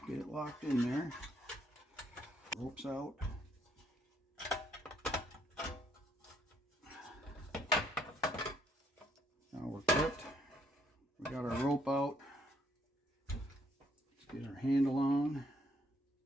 get it locked in there. Rope's out. Now we're clipped. We got our rope out. Let's get our handle on.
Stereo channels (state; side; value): normal; both; correlation 0.69